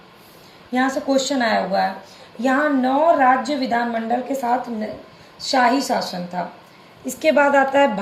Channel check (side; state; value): both; identical; correlation 1.00